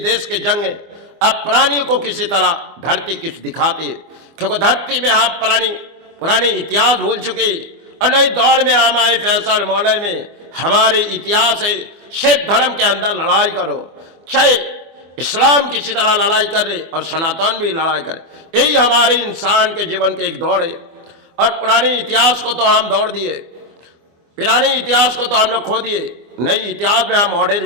के जंग अब प्राणियों को किसी तरह धरती कुछ दिखाती है। क्योंकि धरती में हम पुराने इतिहास भूल चुके, और नई दौड़ में हम आए फैसल मॉडल में। हमारे इतिहास है सिख धर्म के अंदर लड़ाई करो, चाहे इस्लाम किसी तरह लड़ाई कर रहे और सनातन भी लड़ाई करे, यही हमारे इंसान के जीवन के एक दौड़ है। और पुराने इतिहास को तो हम दौड़ दिए, पुराने इतिहास को तो हम लोग खो दिए। नई इतिहास में हम मॉडल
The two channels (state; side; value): late; left; 24 ms